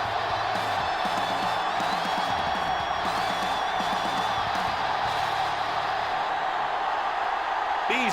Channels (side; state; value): both; identical; correlation 1.00